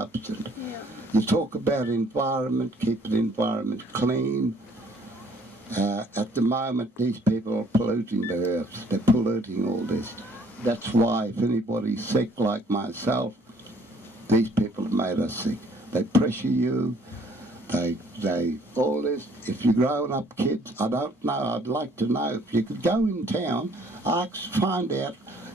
You talk about environment, keep the environment clean. At the moment, these people are polluting the earth. They're polluting all this. That's why if anybody's sick like myself, these people have made us sick. They pressure you. They all this. If you're growing up kids, I don't know. I'd like to know if you could go in town, find out.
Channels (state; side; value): normal; both; correlation 0.61